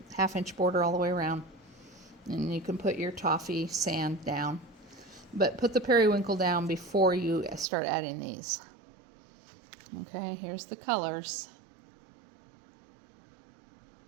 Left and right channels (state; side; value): drops out; left; at 7.7 s